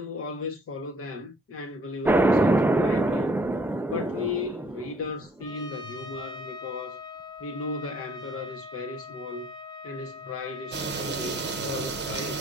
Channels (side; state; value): both; normal; correlation 0.60